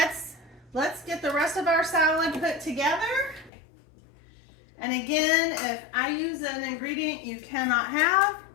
get the rest of our salad put together. And again, if I use an ingredient you cannot have,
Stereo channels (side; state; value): right; drops out; at 3.5 s